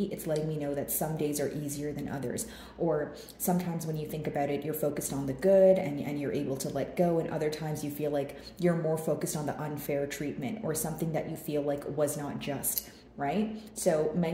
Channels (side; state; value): both; identical; correlation 1.00